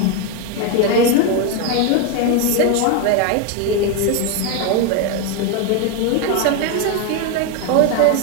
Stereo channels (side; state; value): both; different; correlation 0.02